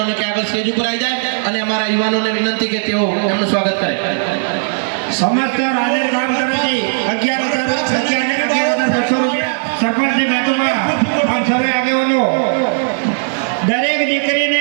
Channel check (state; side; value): silent; left; 59 dB below the other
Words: કે આગળ સ્ટેજ ઉપર આવી જાય અને અમારા યુવાનોને વિનંતી કે તેઓ એમનું સ્વાગત કરે. સમસ્ત હાજર કામ કમિટી 11,600 રૂપિયા સરપંચની બેઠકમાં આપ સર્વે આગેવાનો દરેક